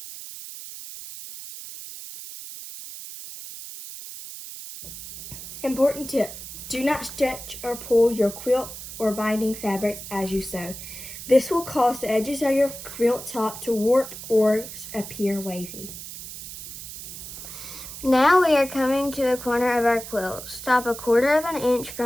Important tip: do not stretch or pull your quilt or binding fabrics as you sew. This will cause the edges of your quilt top to warp or appear wavy. Now we are coming to a corner of our quilt. Stop a 1/4 inch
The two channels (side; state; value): right; noise; hiss, 11 dB below the sound